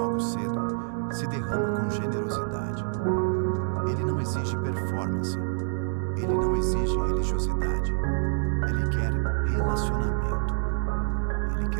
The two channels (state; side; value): silent; left; digital silence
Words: cedo, se derrama com generosidade. Ele não exige performance, ele não exige religiosidade, ele quer relacionamento. Ele